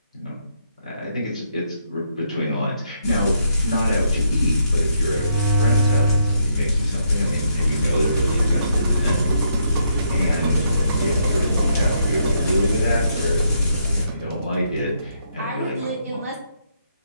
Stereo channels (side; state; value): both; inverted; correlation -0.75